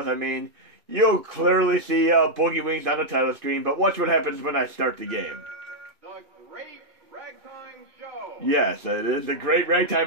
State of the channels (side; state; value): left; late; 2.5 ms